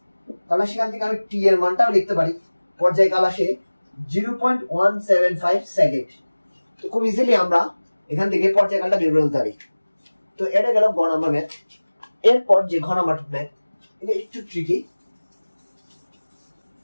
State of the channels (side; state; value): both; inverted; correlation -1.00